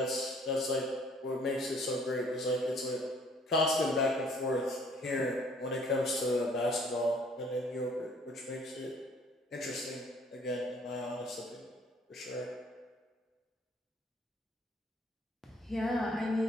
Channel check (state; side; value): normal; both; correlation 0.58